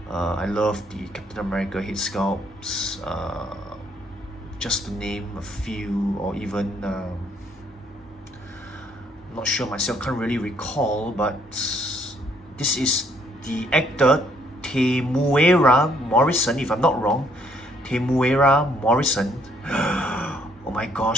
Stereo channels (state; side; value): normal; both; correlation 0.67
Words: I love the Captain America head sculpts. Just to name a few, or even not sure myself, can't really recall, but this is the actor Temuera Morrison, if I'm not wrong. Temuera Morrison. Oh my